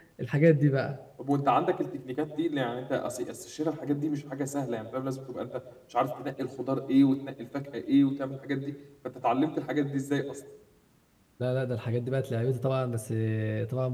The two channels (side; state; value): both; identical; correlation 1.00